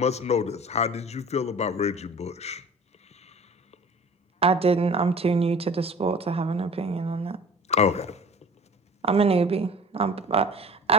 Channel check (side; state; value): both; normal; correlation 0.44